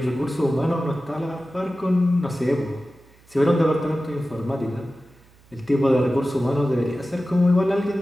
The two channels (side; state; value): right; noise; hum, 29 dB below the sound